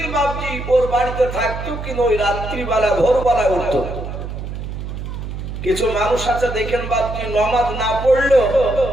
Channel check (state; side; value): noise; right; hum, 7 dB below the sound